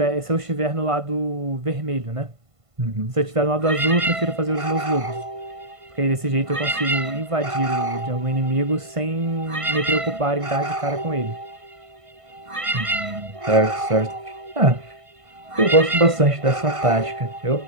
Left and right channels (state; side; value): late; left; 1.5 ms